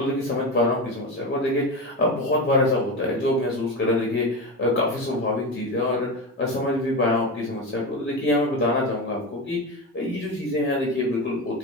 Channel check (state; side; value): normal; both; correlation 0.20